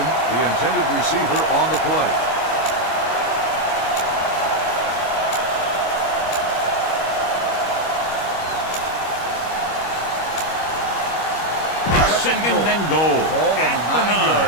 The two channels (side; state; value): right; late; 25 ms